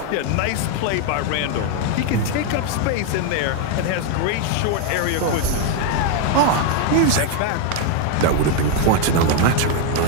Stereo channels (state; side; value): different; both; correlation 0.01